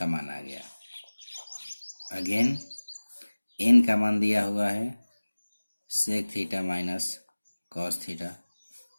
मान आ गया। अगेन एन का मान दिया हुआ है sec theta minus cos theta,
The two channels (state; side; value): inverted; both; correlation -1.00